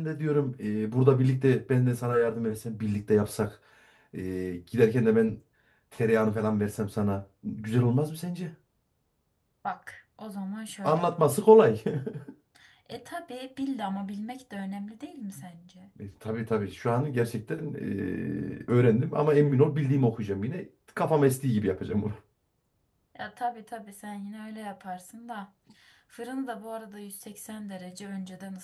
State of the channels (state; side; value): identical; both; correlation 1.00